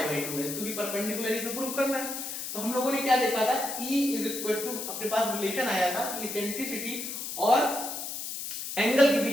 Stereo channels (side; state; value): left; noise; hiss, 6 dB below the sound